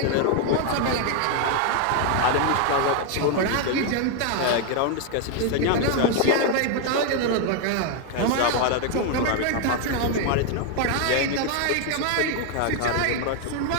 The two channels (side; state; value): both; different; correlation 0.00